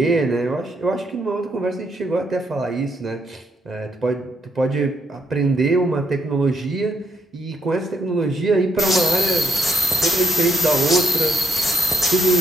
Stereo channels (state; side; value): normal; both; correlation 0.75